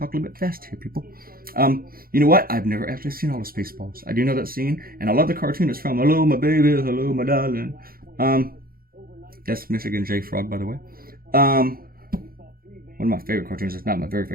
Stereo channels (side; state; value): left; late; 0.42 ms